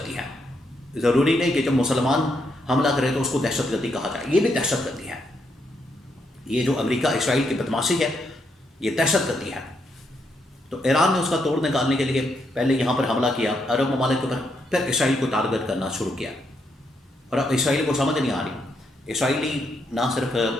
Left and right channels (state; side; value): normal; both; correlation 0.78